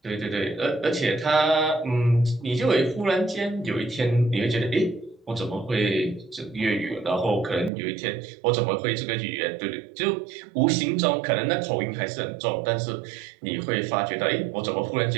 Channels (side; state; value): left; drops out; at 7.7 s